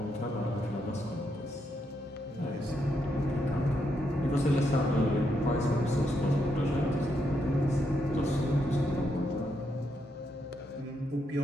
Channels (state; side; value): normal; both; correlation 0.80